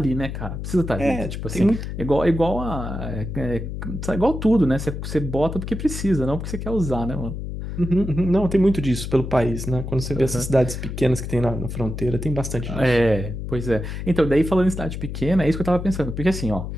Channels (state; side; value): noise; left; hum, 6 dB below the sound